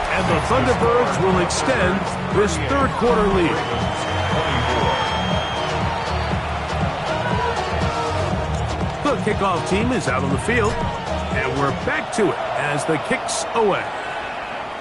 And the Thunderbirds will extend this third quarter lead. The kickoff team is out on the field. And we're back to it as the kick's away.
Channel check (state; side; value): identical; both; correlation 1.00